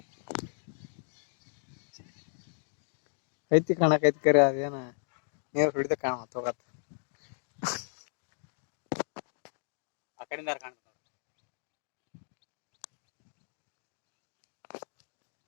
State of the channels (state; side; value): silent; right; digital silence